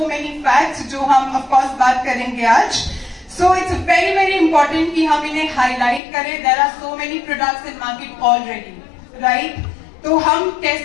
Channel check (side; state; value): right; drops out; at 6.0 s